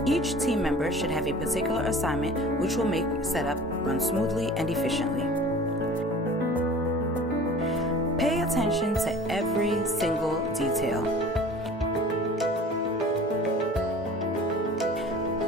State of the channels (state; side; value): normal; both; correlation 0.43